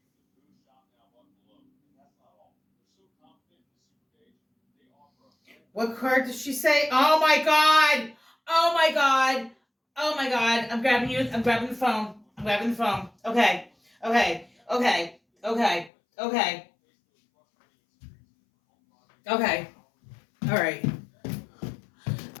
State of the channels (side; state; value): right; drops out; at 15.9 s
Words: What card does she say? Oh my god! Oh my god! Oh my god! I'm grabbing you. I'm grabbing the phone. I'm grabbing the phone. Okay. Okay. Okay. Okay. Okay. Okay. All right.